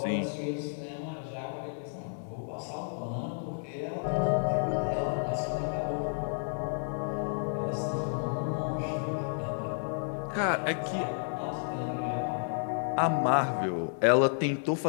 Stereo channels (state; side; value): silent; right; digital silence